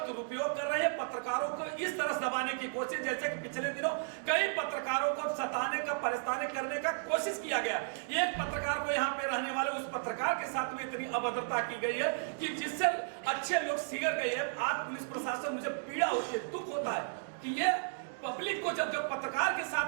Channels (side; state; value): left; silent; digital silence